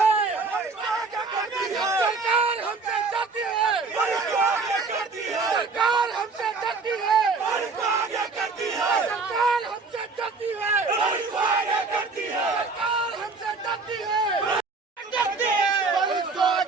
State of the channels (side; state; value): left; quieter; 4.2 dB